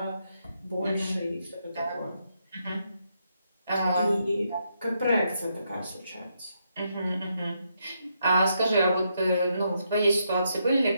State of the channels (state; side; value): inverted; both; correlation -0.79